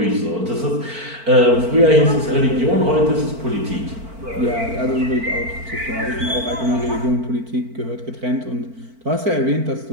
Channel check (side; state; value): left; late; 4.5 ms